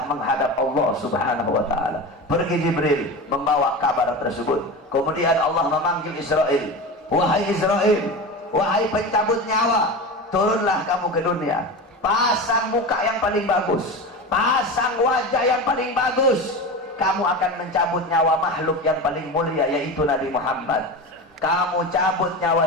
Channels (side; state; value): both; normal; correlation 0.27